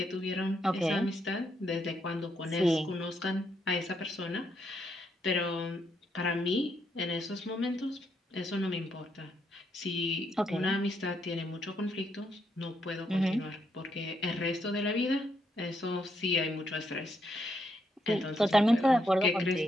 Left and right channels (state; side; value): normal; both; correlation 0.77